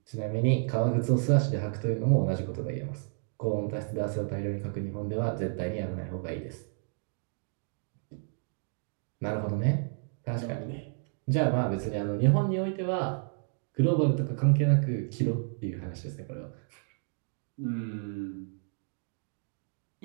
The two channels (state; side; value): silent; left; 57 dB below the other